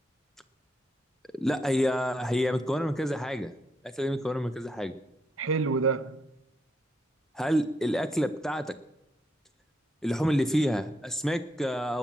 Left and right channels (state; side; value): normal; both; correlation 0.78